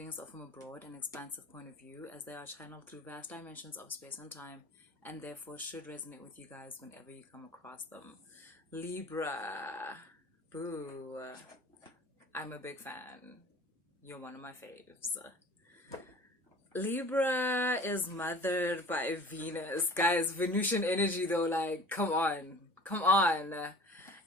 are from a broad and expansive point of view as they are channeled through vast dimensions of space and time and therefore should resonate with you guys whenever you come across them. Libra. Boo. I'm a big fan. You're one of my faves. Libra is mothered by Venus. Guys, Venusian energy though, like, come on. Come on.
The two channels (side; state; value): both; normal; correlation 0.44